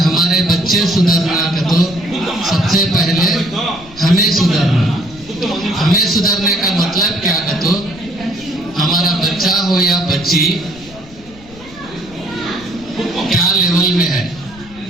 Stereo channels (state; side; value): noise; left; rumble, 21 dB below the sound